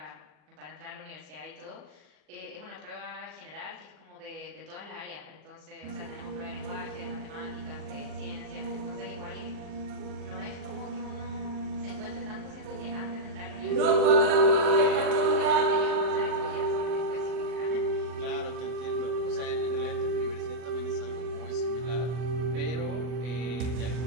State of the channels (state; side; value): late; left; 40 ms